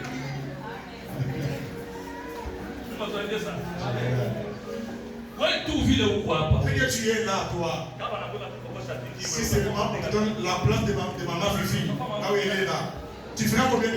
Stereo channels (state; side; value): identical; both; correlation 1.00